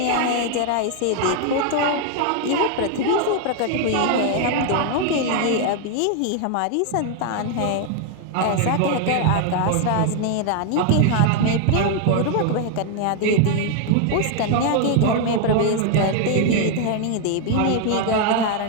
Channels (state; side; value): different; both; correlation 0.00